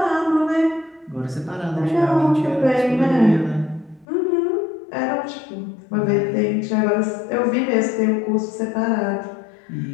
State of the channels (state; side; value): drops out; right; at 4.0 s